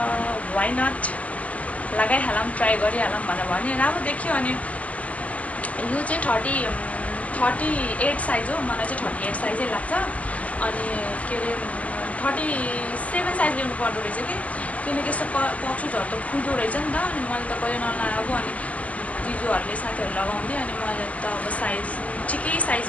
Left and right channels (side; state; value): right; late; 0.071 ms